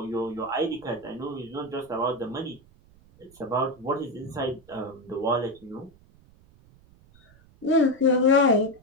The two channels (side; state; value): right; noise; rumble, 27 dB below the sound